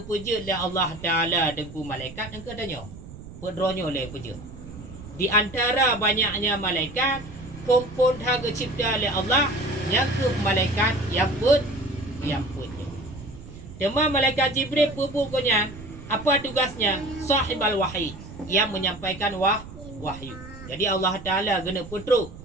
le Allah Taala dengku malaikat engke tanya. Pedronyo le puja. Di antara banyaknya malaikat, pompon tha cipta le Allah yang ke malaikat yang punya. Tema malaikat Jibril pupunya apa tugasnya? Sahibal wahyi, yang menyampaikan wahyu. Jadi Allah Taala guna putruk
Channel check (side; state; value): right; noise; rumble, 15 dB below the sound